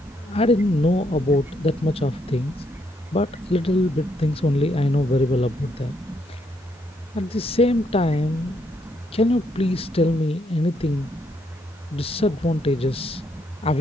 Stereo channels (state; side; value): normal; both; correlation 0.74